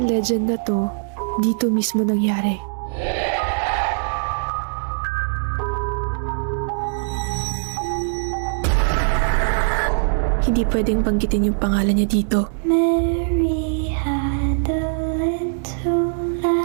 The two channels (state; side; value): silent; left; digital silence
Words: legend na to, dito mismo nangyari. Hindi pwedeng banggitin yung pangalan niya dito. Mary had a little